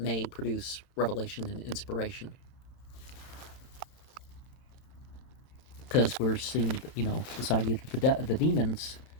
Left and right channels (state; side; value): late; right; 31 ms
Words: produce revelation and inspiration. Because we're seeing, this idea that the demons